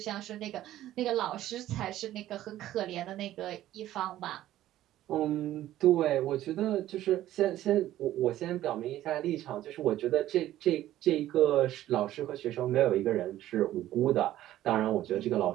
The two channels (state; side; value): quieter; left; 13.7 dB